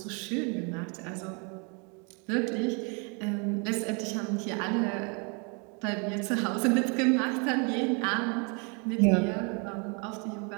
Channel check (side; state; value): left; quieter; 34.1 dB